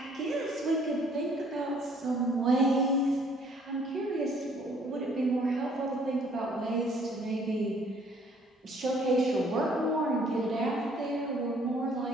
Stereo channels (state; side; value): normal; both; correlation 0.61